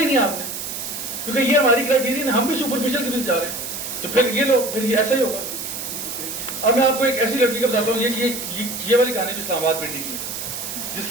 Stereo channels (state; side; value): noise; right; hiss, 6 dB below the sound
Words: نہیں آپ نے, کیونکہ یہ ہماری کرائٹیریا ہم بھی سپرفیشل کے پیچھے جا رہے ہیں. تو پھر یہ لوگ پھر یہ ایسا ہی ہوگا. اب میں آپ کو ایک ایسی لڑکی کا بتاتا ہوں, یہ والی کہانی بھی اسلام آباد پنڈی کی, جس